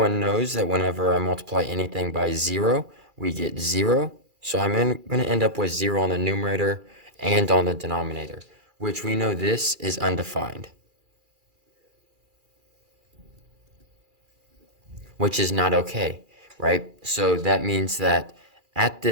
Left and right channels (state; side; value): late; left; 2.4 ms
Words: knows that whenever I multiply anything by 0, we get 0. So I'm going to end up with 0 on the numerator and on the denominator, which we know this is undefined, which is not okay, right? So that means that at